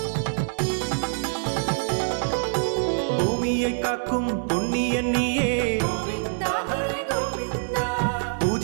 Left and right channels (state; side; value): silent; left; 62 dB below the other